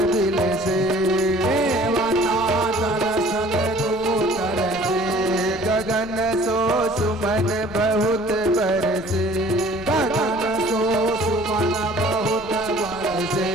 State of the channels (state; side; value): noise; left; rumble, 19 dB below the sound